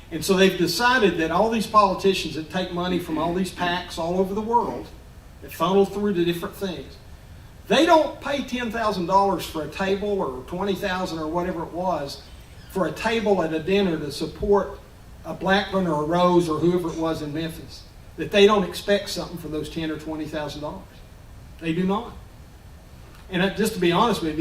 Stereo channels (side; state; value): both; identical; correlation 1.00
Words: And so they've decided that all these politicians that take money from all these PACs all over the world, that funnel through to different things, they don't pay $10,000 for a table or $20,000 or whatever it was for a table at a dinner to support a Blackburn or a Rose or whoever it was in Memphis, that they don't expect something for those $10,000 or $20,000. They do not. And just to be honest with